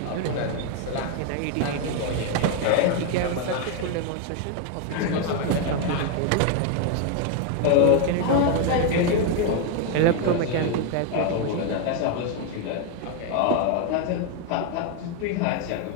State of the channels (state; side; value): different; both; correlation 0.01